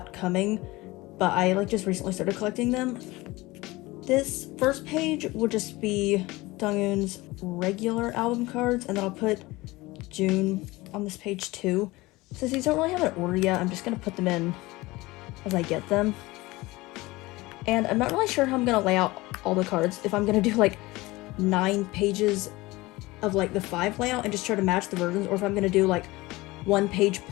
coming, but I like just recently started collecting them. This first page will just be Donghoon's regular album cards, and then I'll put June on this page too. Since these don't really have an order yet, I'm just gonna put them in as I get them. And I'm not really sure how I'm gonna lay out all the cards, if I'm gonna do like 9 pages of like the 5 layout and just try to match the versions, or if I'm gonna do like 1 page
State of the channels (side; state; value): right; quieter; 20.8 dB